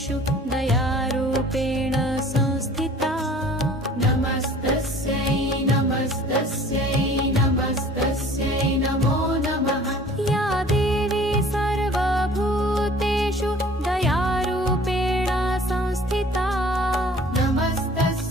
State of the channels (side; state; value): both; normal; correlation 0.49